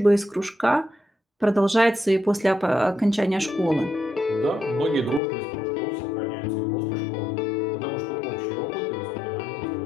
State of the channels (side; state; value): right; drops out; at 5.2 s